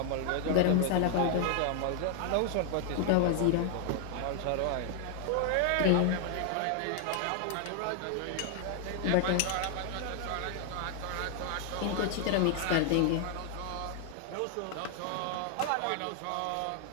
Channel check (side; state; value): both; different; correlation 0.00